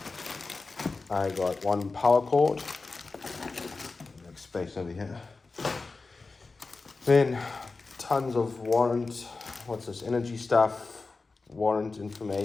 I got one power cord, make space over here. Then tons of energy stuff, warrant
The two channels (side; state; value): right; quieter; 3.9 dB